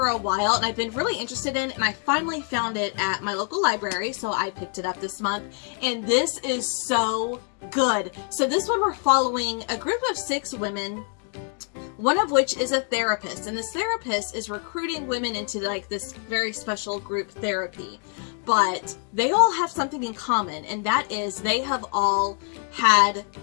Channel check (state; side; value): quieter; right; 39.6 dB